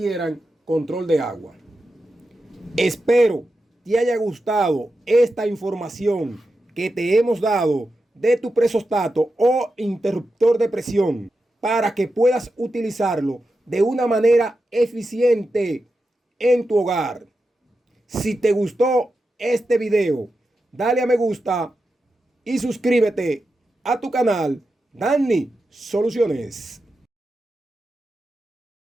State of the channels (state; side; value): normal; both; correlation 0.89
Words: control de agua. Espero te haya gustado esta información que te hemos dado de tu presostato o interruptor de presión para que puedas utilizarlo de una manera eficiente en tu hogar. Si te gustó este video, dale a me gusta y suscríbete a tu canal Danny Soluciones.